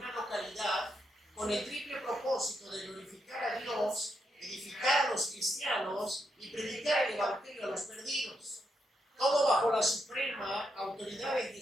localidad con el triple propósito de glorificar a Dios, edificar a los cristianos y predicar el evangelio a los perdidos. Todo bajo la suprema autoridad de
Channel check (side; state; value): both; normal; correlation 0.81